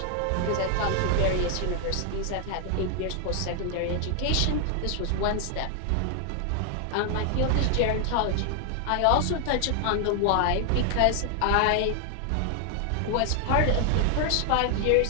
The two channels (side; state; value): both; different; correlation 0.00